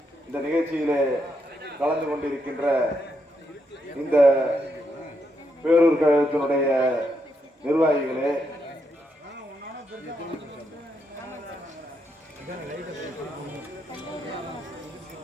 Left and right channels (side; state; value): both; normal; correlation 0.80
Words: இந்த நிகழ்ச்சியிலே கலந்து கொண்டிருக்கின்ற இந்த பேரூர் கழகத்தினுடைய நிர்வாகிகளே,